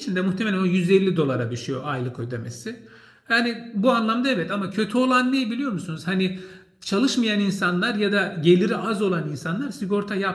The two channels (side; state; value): both; identical; correlation 1.00